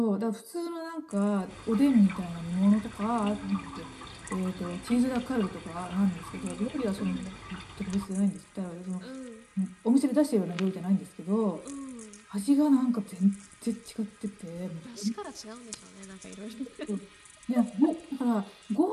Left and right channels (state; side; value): identical; both; correlation 1.00